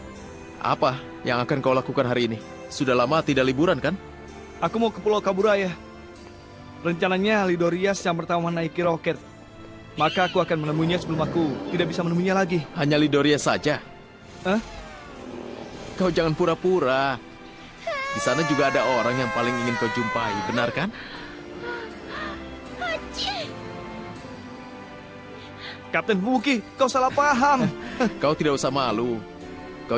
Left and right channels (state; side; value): identical; both; correlation 1.00